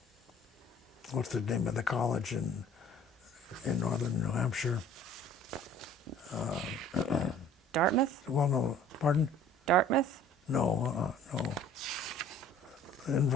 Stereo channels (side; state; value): both; normal; correlation 0.51